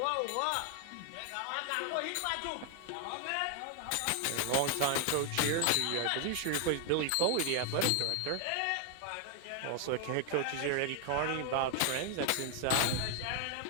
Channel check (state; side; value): different; both; correlation 0.00